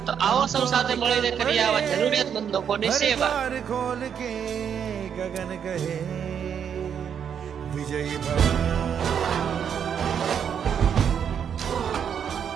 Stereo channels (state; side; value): quieter; left; 8.0 dB